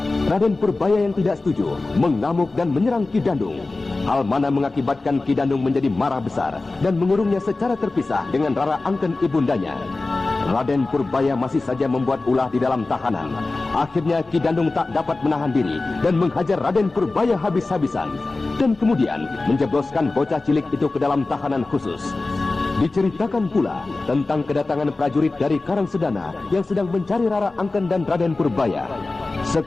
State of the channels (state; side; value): quieter; right; 3.3 dB